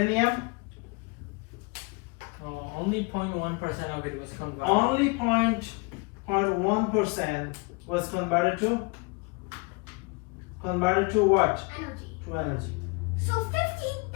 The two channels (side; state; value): right; quieter; 29.3 dB